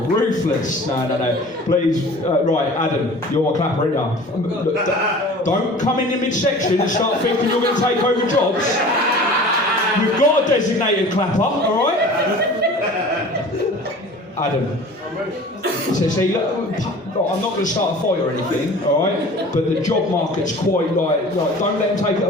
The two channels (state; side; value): normal; both; correlation 0.42